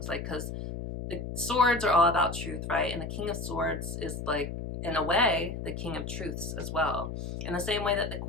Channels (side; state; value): left; noise; hum, 6 dB below the sound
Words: like, because the swords are all about truth, right? And the King of Swords is like, in a way, the King of Truths as well. In the same way that the